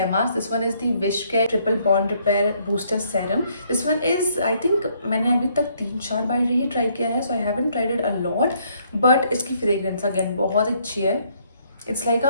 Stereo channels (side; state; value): both; inverted; correlation -0.68